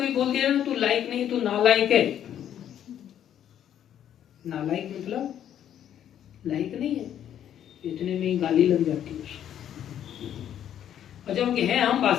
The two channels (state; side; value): quieter; right; 10.2 dB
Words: बोल दिया ना तू लायक नहीं, तू नालायक है। नालायक मतलब लायक नहीं है, इतने में ही गाली लग जाती है उसको। और जब हैं हम